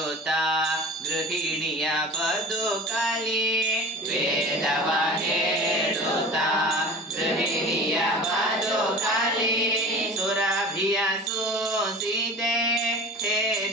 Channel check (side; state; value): both; normal; correlation 0.38